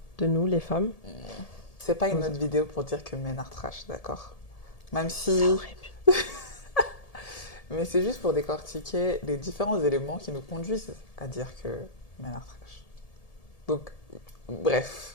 de nous, les femmes. Hmm. C'est pas une Dans- autre vidéo pour dire que men are trash, d'accord? Même Ça si... aurait pu. Mais c'est juste pour décortiquer les différents éléments qui nous conduisent à dire que men are trash. Donc,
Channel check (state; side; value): late; right; 1.7 ms